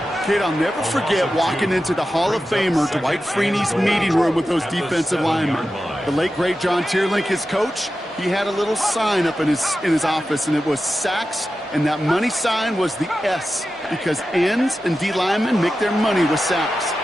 Kid, I'll never forget walking into the Hall of Famer Dwight Freeney's meeting room with those defensive linemen. The late, great John Tierlink, his coach, he had a little sign up in his office, and it was sacks, and that money sign was the S, because ends and D linemen make their money with sacks.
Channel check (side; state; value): both; normal; correlation 0.92